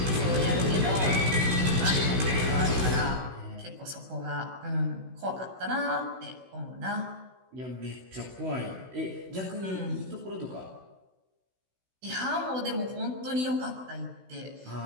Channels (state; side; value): late; left; 16 ms